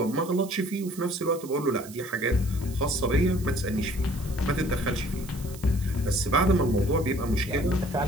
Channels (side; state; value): right; noise; hiss, 17 dB below the sound